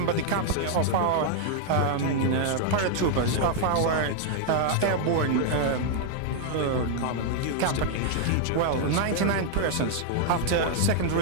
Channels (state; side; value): different; both; correlation -0.01